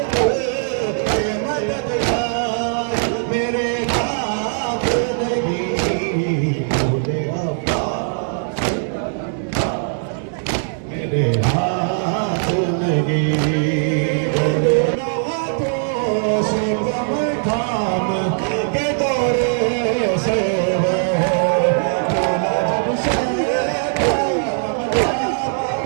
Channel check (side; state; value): left; silent; digital silence